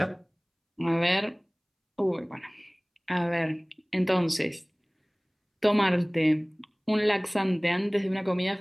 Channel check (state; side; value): identical; both; correlation 1.00